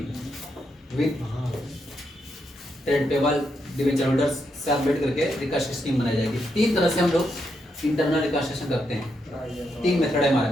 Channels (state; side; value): normal; both; correlation 0.81